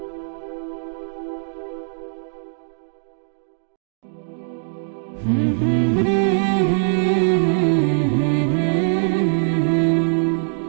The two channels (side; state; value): left; silent; 65 dB below the other